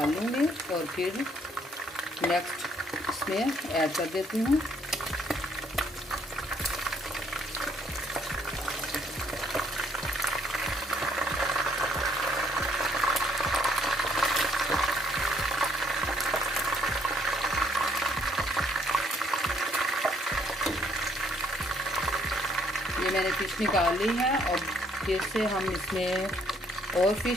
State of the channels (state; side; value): normal; both; correlation 0.67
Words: लूँगी और फिर नेक्स्ट इसमें ऐड कर देती हूँ। ये मैंने फ़िश निकाल ली है और फिर से हम इसमें और